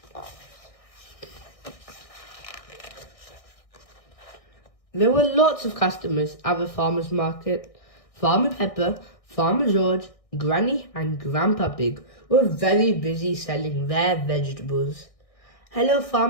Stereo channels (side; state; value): right; late; 1.6 ms